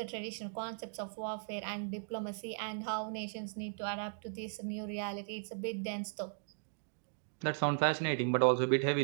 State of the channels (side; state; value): left; silent; digital silence